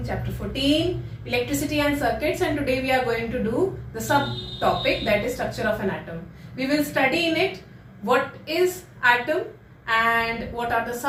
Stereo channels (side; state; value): both; identical; correlation 1.00